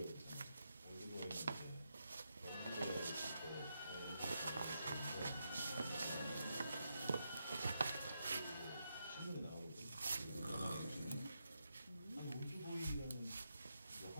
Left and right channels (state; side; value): inverted; both; correlation -0.83